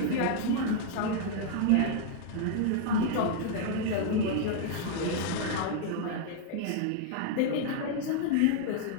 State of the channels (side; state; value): both; different; correlation -0.01